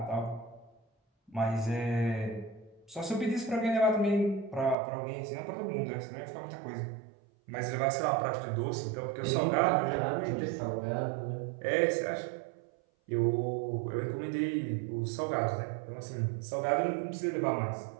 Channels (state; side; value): drops out; left; at 4.8 s